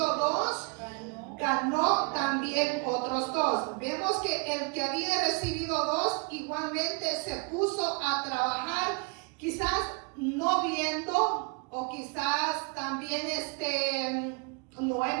2, ganó también otros 2. Vemos que el que había recibido 2 igualmente se puso a trabajar, quizás no viendo, o quizás también no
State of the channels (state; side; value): quieter; left; 32.5 dB